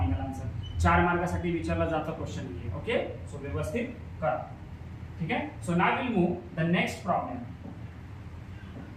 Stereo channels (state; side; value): identical; both; correlation 1.00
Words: answer. 4 मार्कासाठी विचारला जाता question आहे. Okay, so व्यवस्थित करा. ठीक आहे. So now will move the next problem.